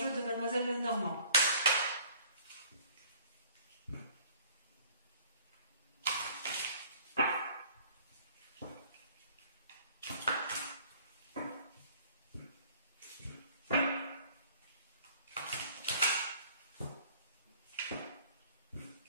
de Mademoiselle Lenormand.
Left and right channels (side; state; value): both; inverted; correlation -0.54